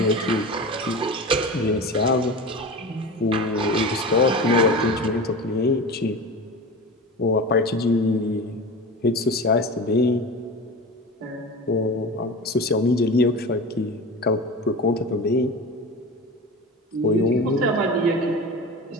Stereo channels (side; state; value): both; normal; correlation 0.31